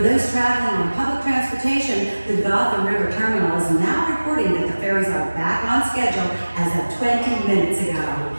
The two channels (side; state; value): both; inverted; correlation -1.00